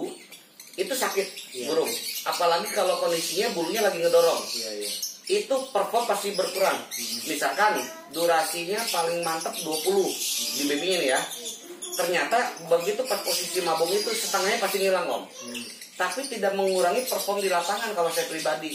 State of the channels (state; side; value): identical; both; correlation 1.00